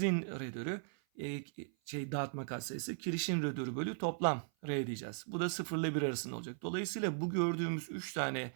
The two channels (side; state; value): left; silent; 52 dB below the other